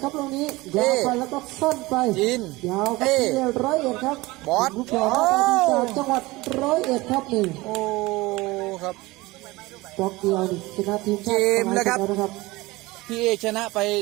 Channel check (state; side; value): quieter; left; 21.0 dB